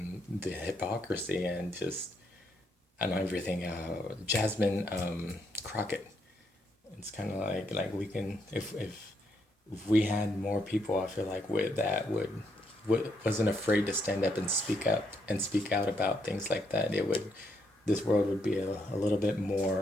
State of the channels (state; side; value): normal; both; correlation 0.76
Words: the hypocrisy and everything. Jasmine Crockett. It's kind of like we can, if we had more people, I feel like wasn't afraid to stand up and speak out about things like that, this world would be a little bit